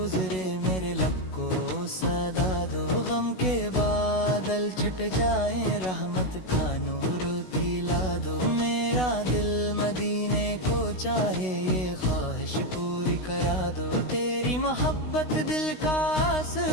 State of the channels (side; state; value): right; late; 16 ms